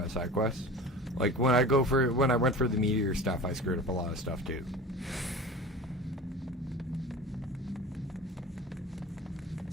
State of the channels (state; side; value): normal; both; correlation 0.37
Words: side quests. Like when I went for the meteor stuff, I screwed up a lot of stuff too.